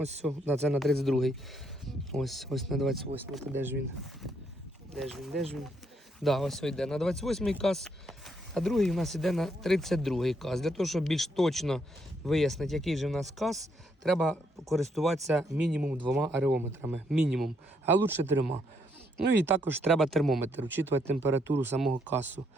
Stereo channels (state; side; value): normal; both; correlation 0.74